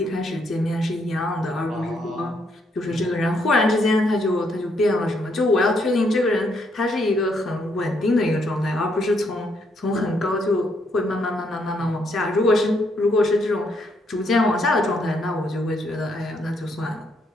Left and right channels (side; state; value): both; normal; correlation 0.74